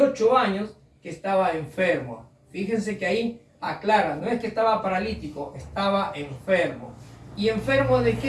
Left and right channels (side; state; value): both; identical; correlation 1.00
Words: años que estaba enfermo. Fíjense que ahí aclara, no es que estaba paralítico, estaba enfermo. ¿Y enfermo de